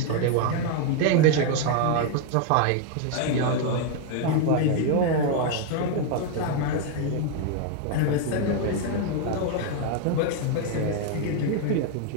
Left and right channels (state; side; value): different; both; correlation 0.01